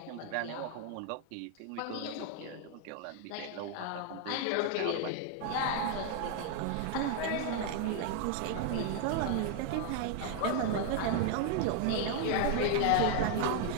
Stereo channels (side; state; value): both; different; correlation 0.00